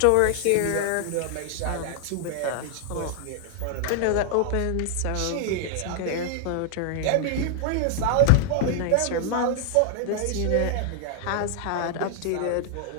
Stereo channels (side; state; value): both; different; correlation 0.00